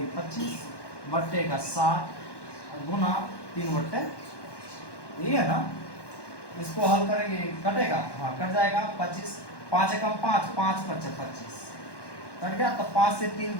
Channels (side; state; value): right; late; 1.1 ms